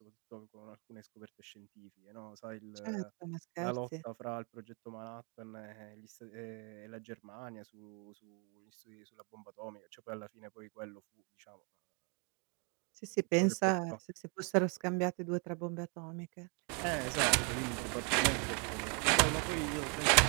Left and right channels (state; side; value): quieter; left; 35.8 dB